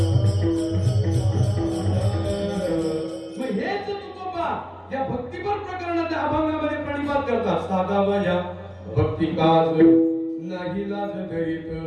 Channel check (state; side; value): identical; both; correlation 1.00